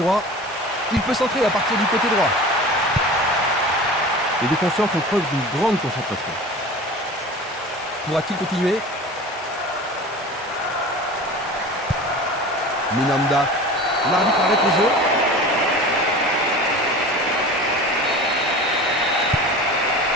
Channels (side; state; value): both; normal; correlation 0.37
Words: Il peut centrer à partir du côté droit. Les défenseurs font preuve d'une grande concentration. Pourra-t-il continuer? Minanda. L'arbitre arrête le jeu.